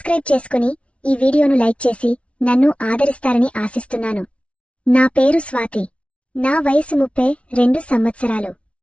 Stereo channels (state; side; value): late; right; 0.062 ms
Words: చేసుకుని ఈ వీడియోను లైక్ చేసి నన్ను ఆదరిస్తారని ఆశిస్తున్నాను. నా పేరు స్వాతి. నా వయసు 32 సంవత్సరాలు.